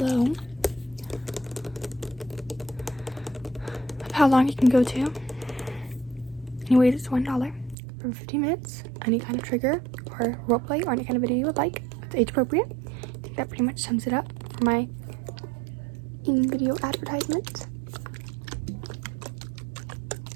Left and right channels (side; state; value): left; drops out; at 7.8 s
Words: Of how long it can go to. Anyways, it's $1 for 15 minutes. Any kind of trigger or roleplay or any kind of video you would like. It's age appropriate. I think that pretty much sums it up for my in-video advertisement.